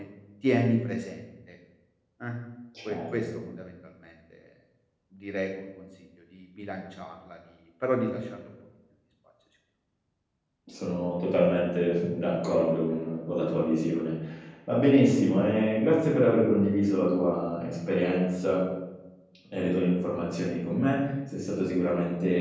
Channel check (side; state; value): both; identical; correlation 1.00